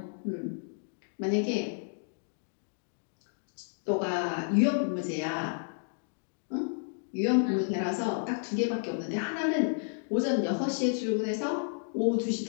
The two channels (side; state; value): right; silent; digital silence